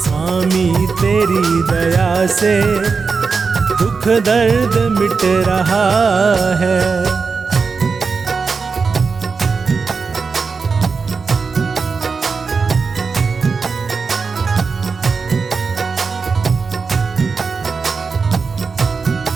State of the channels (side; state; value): left; quieter; 4.9 dB